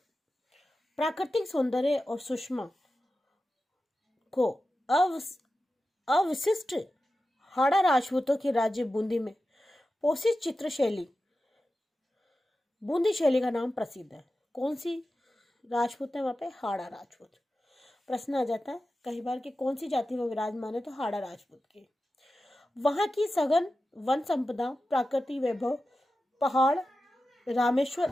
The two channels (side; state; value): both; normal; correlation 0.93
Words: प्राकृतिक सौंदर्य और सुषमा को अविशिष्ट हाड़ा राजपूतों के राज्य बूंदी में पोषित चित्र शैली बूंदी शैली का नाम प्रसिद्ध है। कौन सी राजपूत है वहां पे? हाड़ा राजपूत। प्रश्न आ जाता है कई बार कि कौन सी जाति में विराजमान है, तो हाड़ा राजपूत के। वहां की सघन वन संपदा, प्राकृतिक वैभव, पहाड़, रामेश्वर